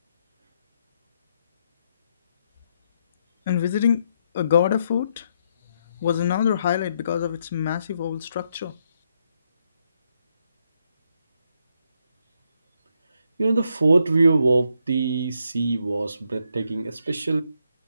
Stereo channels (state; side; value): inverted; both; correlation -0.77